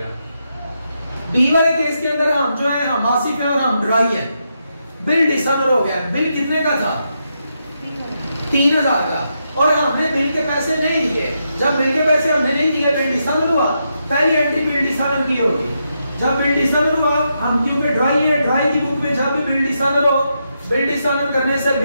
बी वाले केस के अंदर हम जो है हम आसिफ है और हम ड्राई है। बिल डिसऑनर हो गया। बिल कितने का था, 3000 का, और हमने बिल के पैसे नहीं दिए। जब बिल के पैसे हमने नहीं दिए बिल डिसऑनर हुआ। पहली एंट्री बिल डिसऑनर की होगी। जब बिल डिसऑनर हुआ, हम क्योंकि ड्राई है, ड्राई की बुक में जब भी बिल डिसऑनर हो, बिल डिसऑनर करने से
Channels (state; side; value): inverted; both; correlation -0.83